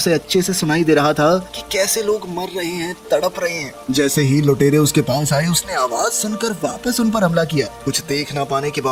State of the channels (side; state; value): both; identical; correlation 1.00